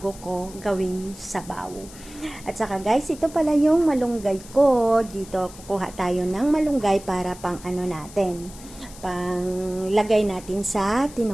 ko gawin sabaw. At saka guys, ito pala yung malunggay ko. Dito kukuha tayo ng malunggay para pang ano natin, pang lagay natin sa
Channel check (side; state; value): left; noise; hiss, 18 dB below the sound